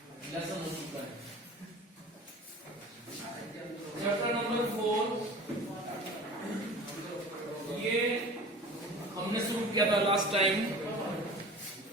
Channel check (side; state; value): both; normal; correlation 0.40